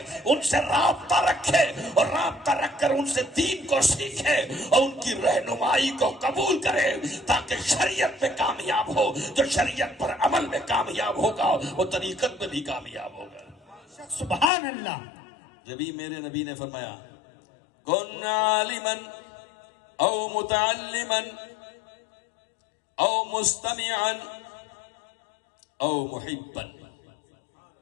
ان سے رابطہ رکھے، اور رابطہ رکھ کر ان سے دین کو سیکھے اور ان کی رہنمائی کو قبول کرے تاکہ شریعت میں کامیاب ہو۔ جو شریعت پر عمل میں کامیاب ہوگا وہ طریقت میں بھی کامیاب ہوگا۔ سبحان اللہ۔ جبھی میرے نبی نے فرمایا کن عالما او متعلما او مستمعا او محبا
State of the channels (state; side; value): drops out; right; at 14.5 s